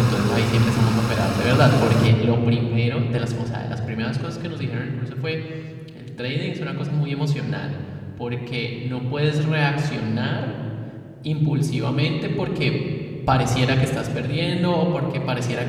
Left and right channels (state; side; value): identical; both; correlation 1.00